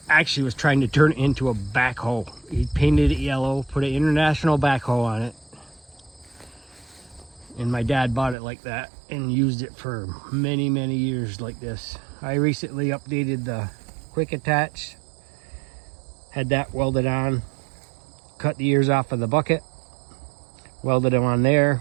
actually was trying to turn it into a backhoe. He painted it yellow, put an international backhoe on it. And my dad bought it like that and used it for many, many years like this. I recently updated the quick attach, had that welded on, cut the ears off of the bucket, welded them on there,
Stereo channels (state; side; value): drops out; left; at 8.3 s